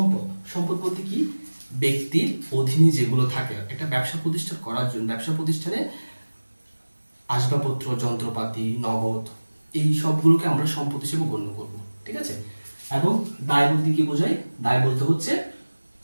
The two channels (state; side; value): inverted; both; correlation -1.00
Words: সম্পদ বলতে কি? ব্যক্তির অধীনে যেগুলো থাকে। একটা ব্যবসা প্রতিষ্ঠান করার জন্য ব্যবসা প্রতিষ্ঠানে আসবাবপত্র, যন্ত্রপাতি, নগদ, এই সবগুলোকে আমরা সম্পদ হিসেবে গণ্য করব, ঠিক আছে। এবং দায় বলতে কি বোঝায়? দায় বলতে হচ্ছে